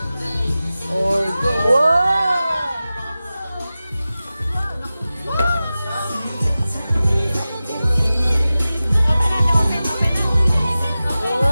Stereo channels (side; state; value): both; inverted; correlation -0.95